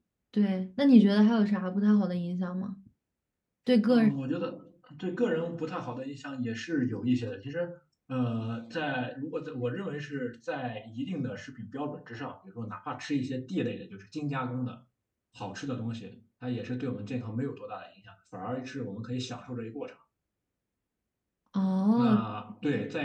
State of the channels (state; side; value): identical; both; correlation 1.00